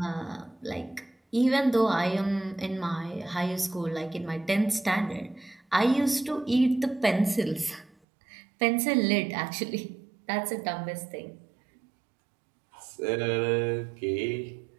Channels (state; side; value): drops out; left; at 8.0 s